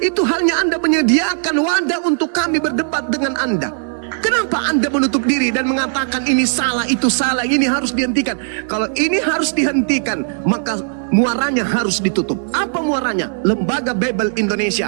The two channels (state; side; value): silent; left; 67 dB below the other